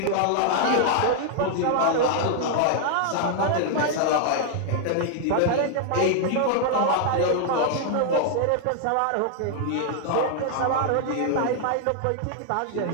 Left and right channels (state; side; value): different; both; correlation 0.00